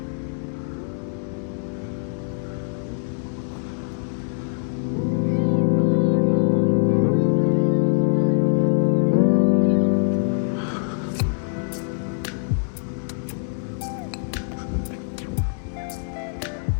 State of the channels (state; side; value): silent; right; digital silence